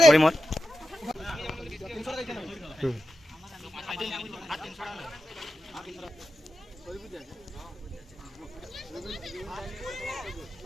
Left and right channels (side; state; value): both; normal; correlation 0.91